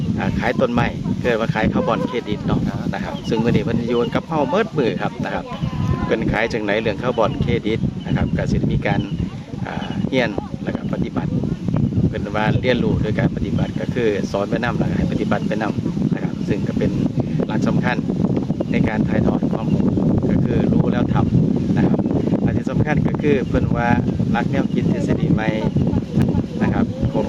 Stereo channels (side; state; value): both; identical; correlation 1.00